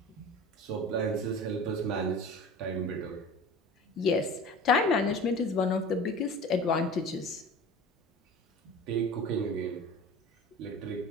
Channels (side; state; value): both; normal; correlation 0.38